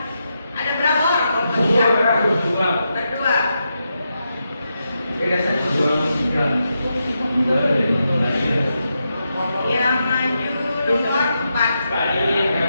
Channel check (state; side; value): inverted; both; correlation -0.85